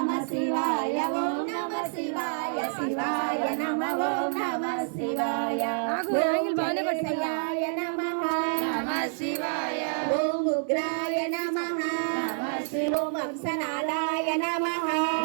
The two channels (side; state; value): left; silent; digital silence